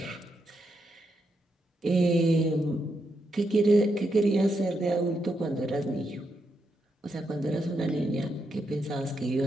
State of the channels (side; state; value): both; normal; correlation 0.82